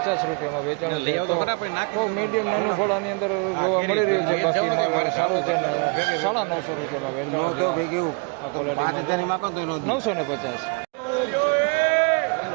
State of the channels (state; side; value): quieter; left; 35.0 dB